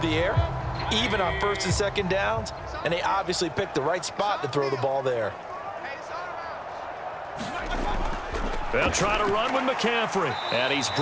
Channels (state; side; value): identical; both; correlation 1.00